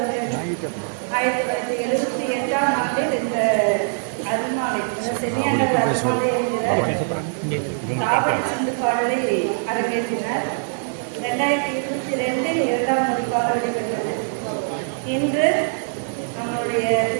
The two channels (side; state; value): left; silent; 60 dB below the other